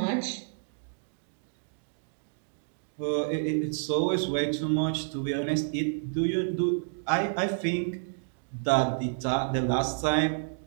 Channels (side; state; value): left; silent; digital silence